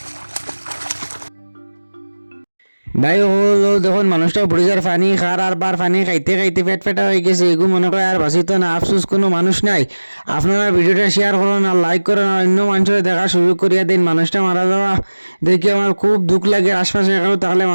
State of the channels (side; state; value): both; inverted; correlation -1.00